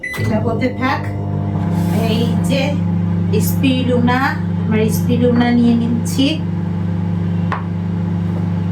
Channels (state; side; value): identical; both; correlation 1.00